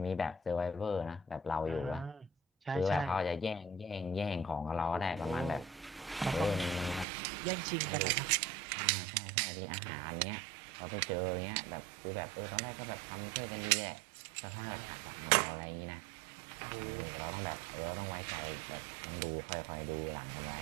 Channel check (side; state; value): left; drops out; at 7.1 s